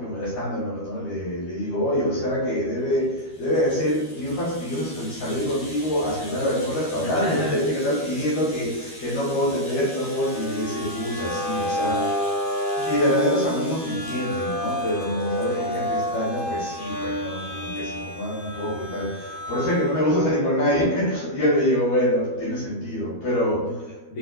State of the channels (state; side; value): late; right; 13 ms